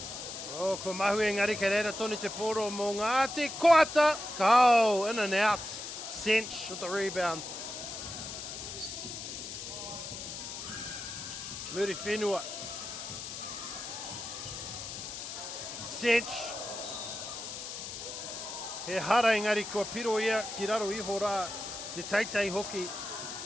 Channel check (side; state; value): left; noise; hiss, 8 dB below the sound